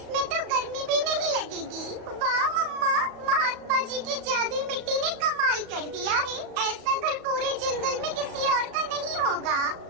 तो गर्मी भी नहीं लगेगी। वाह मम्मा, महात्मा जी की जादुई मिट्टी ने कमाल कर दिया है। ऐसा घर पूरे जंगल में किसी और का नहीं होगा।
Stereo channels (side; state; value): left; late; 35 ms